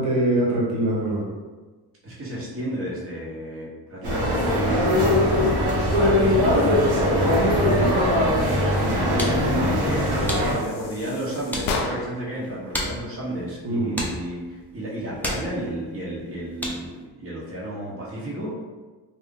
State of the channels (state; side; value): normal; both; correlation 0.18